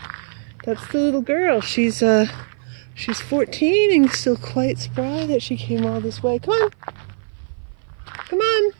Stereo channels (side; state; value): left; silent; 56 dB below the other